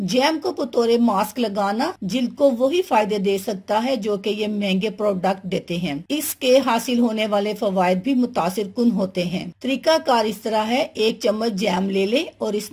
जैम को बतौर मास्क लगाना जिल्द को वही फायदे दे सकता है जो कि ये महंगे प्रोडक्ट देते हैं। इसके हासिल होने वाले फवायद भी मुतासिर कुन होते हैं। तरीकाकार इस तरह है, 1 चम्मच जैम ले ले और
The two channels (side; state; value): both; identical; correlation 1.00